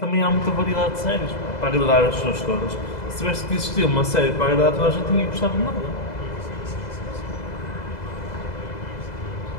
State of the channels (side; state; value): right; late; 2.0 ms